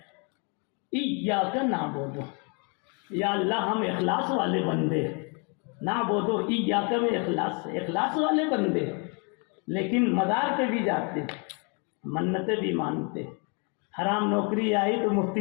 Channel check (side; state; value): right; quieter; 35.9 dB